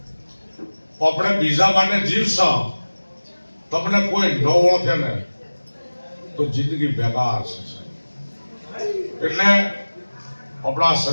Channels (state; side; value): inverted; both; correlation -1.00